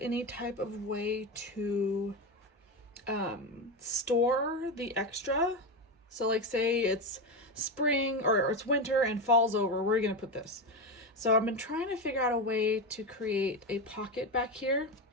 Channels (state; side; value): normal; both; correlation 0.15